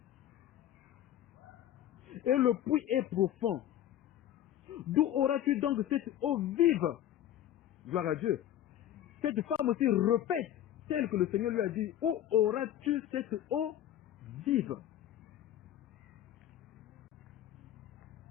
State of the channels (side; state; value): right; quieter; 11.7 dB